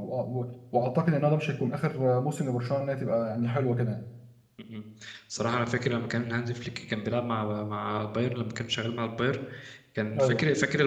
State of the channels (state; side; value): identical; both; correlation 1.00